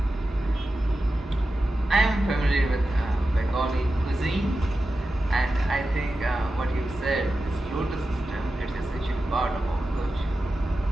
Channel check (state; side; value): normal; both; correlation 0.92